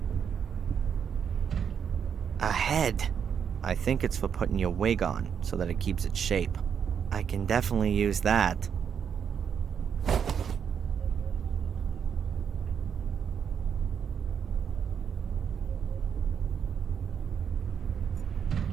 A head. I think it's for putting your wig on, so that it keeps its shape. I can definitely use that.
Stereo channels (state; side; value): quieter; left; 7.5 dB